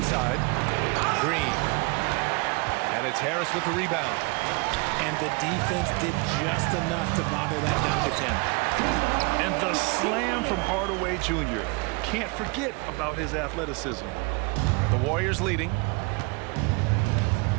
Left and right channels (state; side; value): quieter; left; 29.2 dB